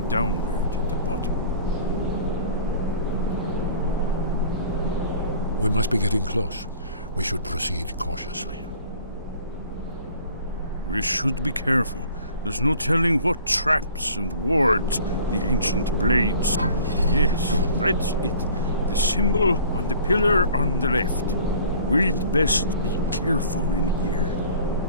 downward at the bottom. We must be getting close. We should proceed cautiously. We should be careful. There's no telling what traps and wards the ancient blades. Yes, that's it. The symbol on the pillar on the left. We'd best be careful in here.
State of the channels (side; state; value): both; inverted; correlation -0.49